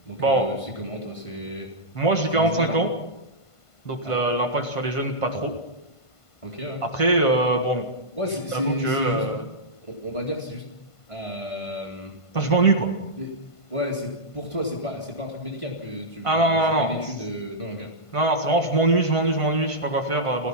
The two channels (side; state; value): right; late; 1.5 ms